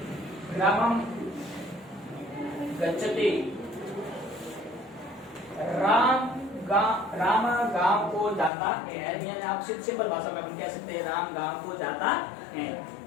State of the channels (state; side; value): drops out; right; at 8.5 s